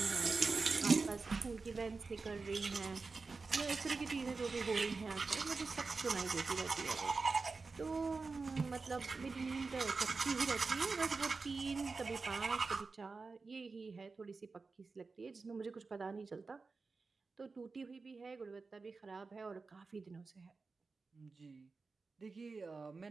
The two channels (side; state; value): left; quieter; 4.2 dB